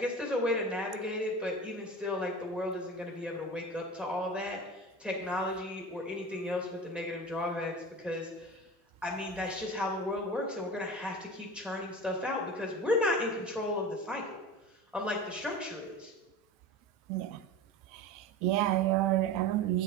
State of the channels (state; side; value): normal; both; correlation 0.32